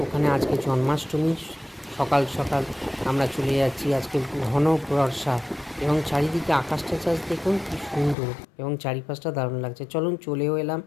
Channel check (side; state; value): right; drops out; at 8.2 s